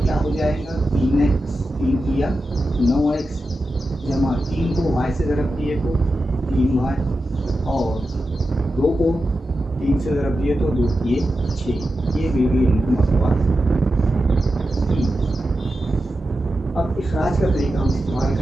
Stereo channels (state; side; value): normal; both; correlation 0.91